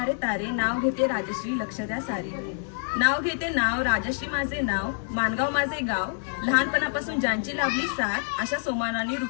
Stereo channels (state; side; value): silent; right; 60 dB below the other